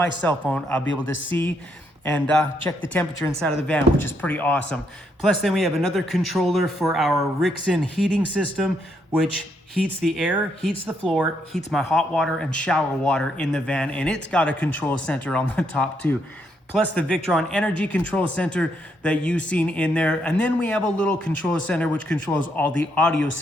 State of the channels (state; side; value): normal; both; correlation 0.75